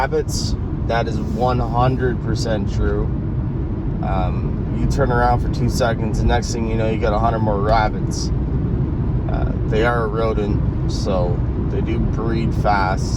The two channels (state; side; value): identical; both; correlation 1.00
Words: that is 100% true. You turn around for 2 seconds, the next thing you know, you got 100 more rabbits. They are a rodent, so they do breed